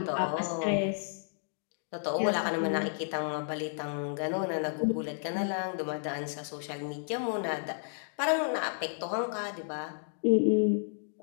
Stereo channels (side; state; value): right; silent; digital silence